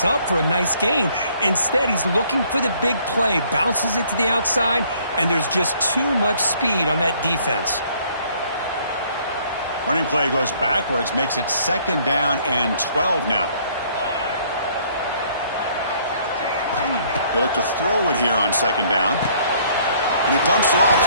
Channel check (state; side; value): inverted; both; correlation -0.61